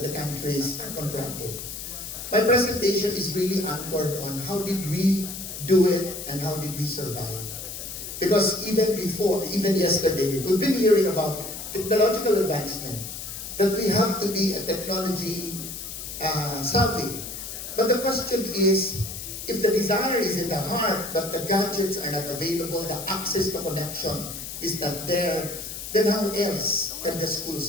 the countries are confronted. My presentation is really anchored on how did we do it and how did we survive. Because even before, even yesterday, we've been hearing about technological advancement, that we have to be a technology savvy. But the question is, if the desire is in the heart, but the gadgets are not available, the access to connection is not there, then how else can the school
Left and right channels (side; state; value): left; noise; hiss, 8 dB below the sound